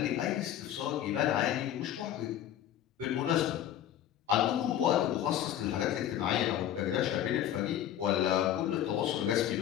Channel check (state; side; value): quieter; right; 11.3 dB